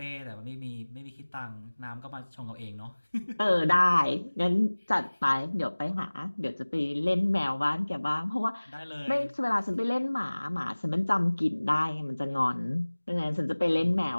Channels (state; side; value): inverted; both; correlation -1.00